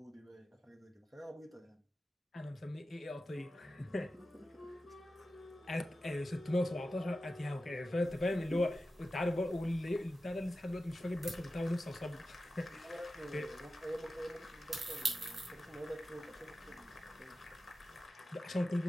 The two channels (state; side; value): normal; both; correlation 0.93